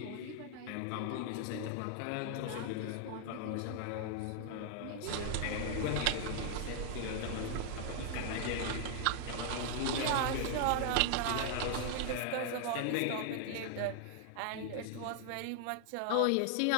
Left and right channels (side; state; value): both; different; correlation 0.00